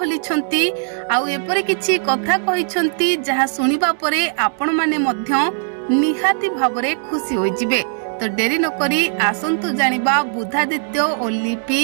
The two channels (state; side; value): silent; left; digital silence